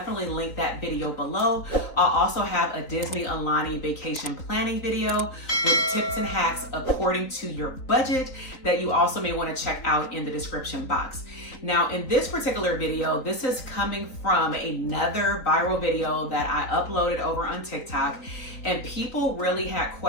link that video below. I'll also have a Disney Aulani vacation planning video with tips and hacks according to your budget that you also may want to check out in the description box. Now, in this particular video, this is coming from another viral video that I uploaded over on TikTok, and people really had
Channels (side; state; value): right; late; 3.9 ms